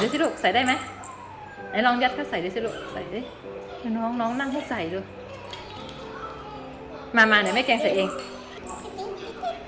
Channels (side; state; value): both; identical; correlation 1.00